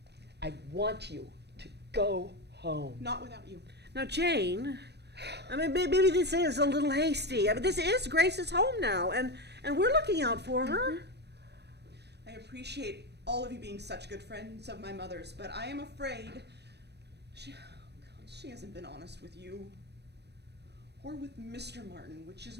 I want you to go home. Not without you. Now, Jane, I mean, maybe this is a little hasty. I mean, this is Grace's home now, and we're looking out for her. I appreciate all of you being such good friends of my mother's, but I am afraid she hasn't been honest with you. Or with Mr. Martin, which is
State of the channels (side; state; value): left; late; 0.49 ms